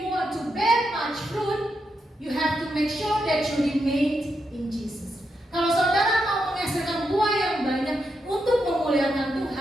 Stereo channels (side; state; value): both; normal; correlation 0.84